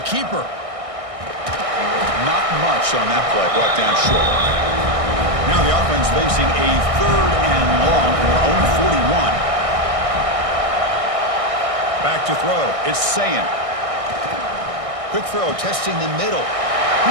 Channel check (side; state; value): left; late; 1.6 ms